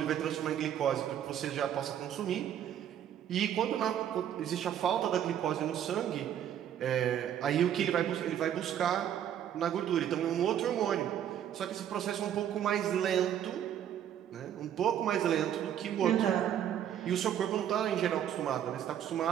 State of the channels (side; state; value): left; quieter; 10.1 dB